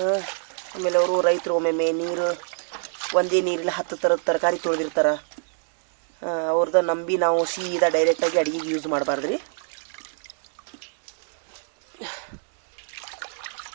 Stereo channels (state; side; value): silent; left; digital silence